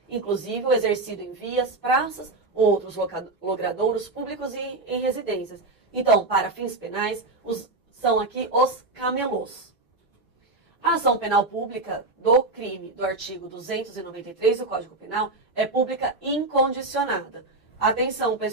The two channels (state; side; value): quieter; left; 3.1 dB